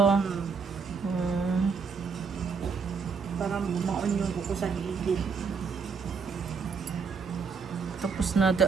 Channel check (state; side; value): quieter; left; 5.4 dB